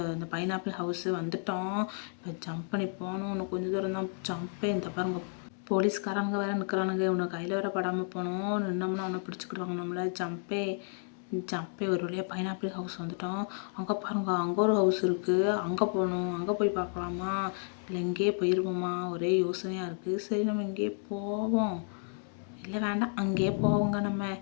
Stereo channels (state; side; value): silent; right; 57 dB below the other